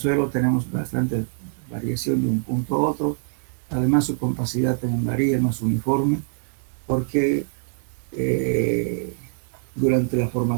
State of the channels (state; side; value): silent; left; digital silence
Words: tenemos bastante variación de un punto a otro. Además, su compacidad también varía, no es uniforme, porque durante la